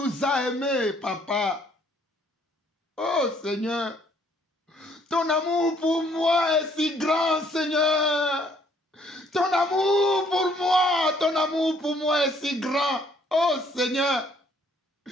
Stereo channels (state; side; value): normal; both; correlation 0.64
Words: as aimés, Papa. Oh Seigneur, ton amour pour moi est si grand, Seigneur. Ton amour pour moi est si grand. Oh Seigneur,